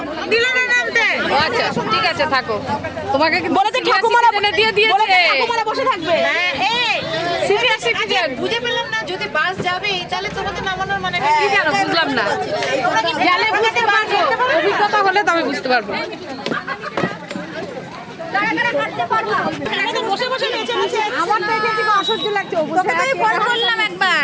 দিলে না নামতে। আচ্ছা ঠিক আছে, থাকো। তোমাকে কি বলেছে ঠাকুমারা এনে দিয়ে দিয়েছে? ঠাকুমারা বসে থাকবে। হ্যাঁ, এই সিনিয়র সিটিজেন। বুঝে পেলাম না, যদি বাস যাবে তাহলে তোমাকে নামানোর মানে কি জানো, বুঝলাম না। গেলে বুঝতে পারবো, অভিজ্ঞতা হলে তবে বুঝতে পারবো। আমার তো এখানে থেকে অসহ্য লাগছে। তোকে তো ফোন করলাম একবার,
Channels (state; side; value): identical; both; correlation 1.00